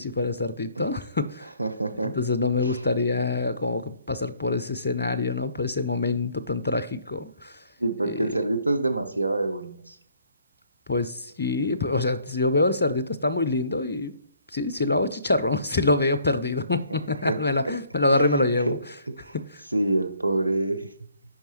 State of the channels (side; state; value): both; inverted; correlation -0.61